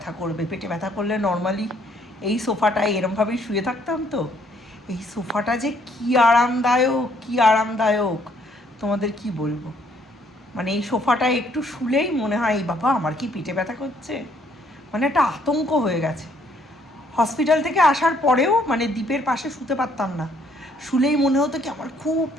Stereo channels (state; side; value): normal; both; correlation 0.66